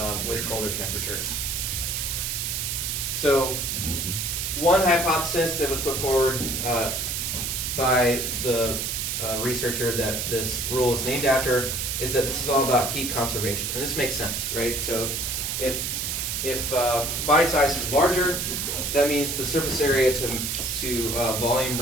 with colder temperatures. So one hypothesis that was put forward by the researcher that this rule is named after is that this is all about heat conservation. And this makes sense, right? So if body size is larger, that means the surface area to volume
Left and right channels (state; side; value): noise; right; hiss, 1 dB below the sound